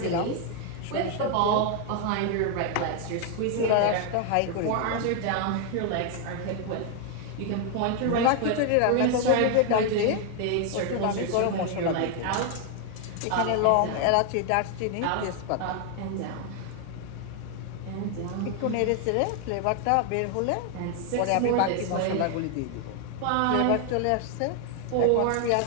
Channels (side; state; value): both; different; correlation 0.00